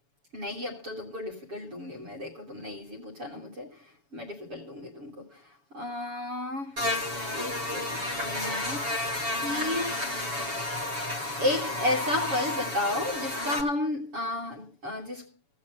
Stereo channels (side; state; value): left; late; 7.1 ms